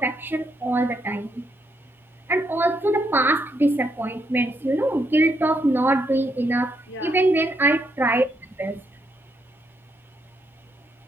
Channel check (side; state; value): both; normal; correlation 0.77